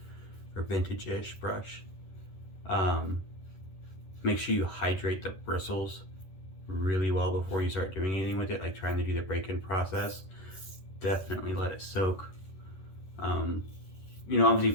or vintage-ish brush, make sure you hydrate the bristles really well before you start doing anything with it, like trying to do the break-in process. Definitely let it soak. You know, obviously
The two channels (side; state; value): right; late; 11 ms